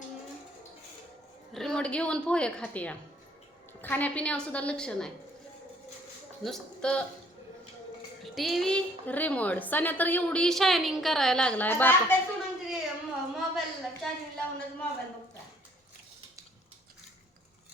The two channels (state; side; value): normal; both; correlation 0.61